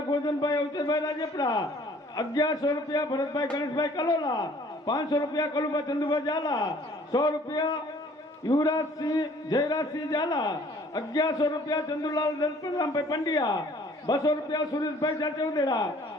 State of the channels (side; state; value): both; normal; correlation 0.55